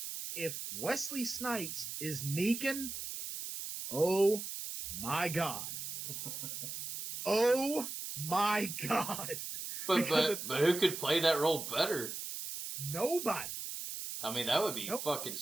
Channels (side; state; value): right; noise; hiss, 6 dB below the sound